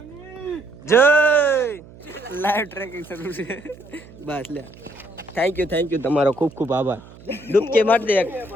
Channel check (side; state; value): right; noise; hum, 21 dB below the sound